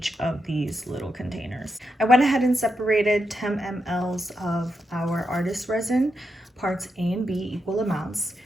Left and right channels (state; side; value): normal; both; correlation 0.85